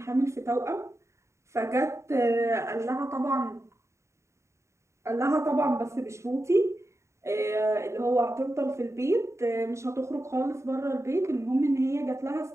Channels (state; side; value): late; left; 0.14 ms